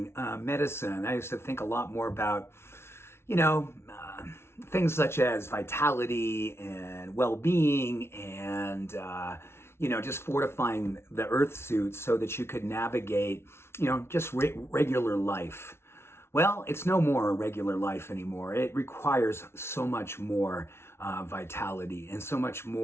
medicine, I used to think a lot more about, things such as vitality and well-being and, just fortifying the earth suit so that you could navigate, just regular life. Well, it's no more a regular life anymore. It requires so much more vitality and so much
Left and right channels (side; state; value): right; late; 0.12 ms